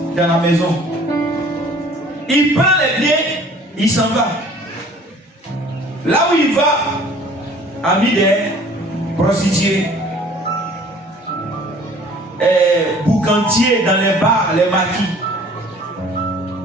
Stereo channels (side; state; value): both; normal; correlation 0.51